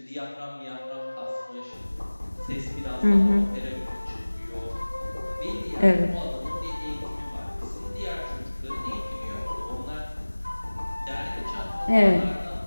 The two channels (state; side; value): inverted; both; correlation -1.00